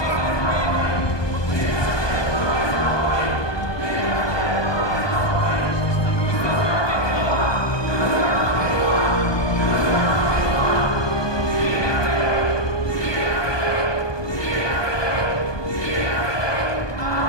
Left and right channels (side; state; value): right; late; 1.2 ms